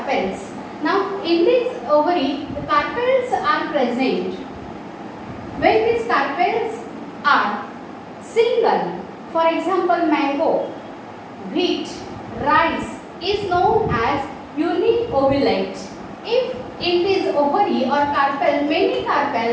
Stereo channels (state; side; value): identical; both; correlation 1.00